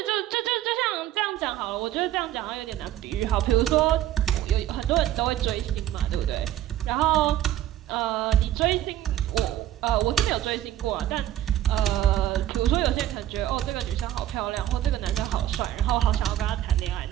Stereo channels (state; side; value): quieter; left; 12.7 dB